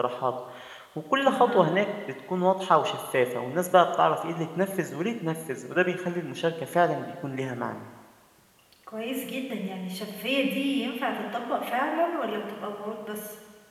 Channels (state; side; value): identical; both; correlation 1.00